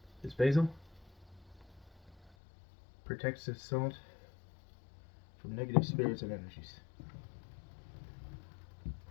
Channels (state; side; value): drops out; right; at 2.4 s